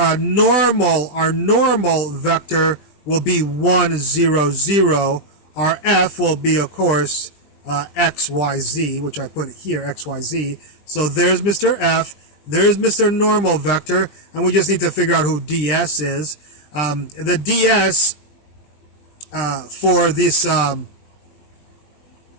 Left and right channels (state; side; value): late; right; 20 ms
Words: normal vector will be 1, 0, 0. Our f will be, of course, x, y, z, which I put here, x, y, z. So there's Mr. F. There's Mr. Normal vector, and we just need to figure out who ds is. The ds for